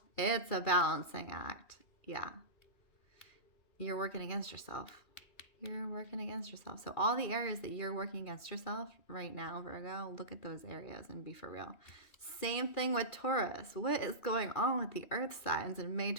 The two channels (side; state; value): right; late; 2.4 ms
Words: It's a balancing act. Yeah. You're working against yourself. You're working against yourself. So all the areas that you're working against yourself right now, Virgo, look at those areas and be for real. Same thing with Taurus. What is going on with the earth signs in May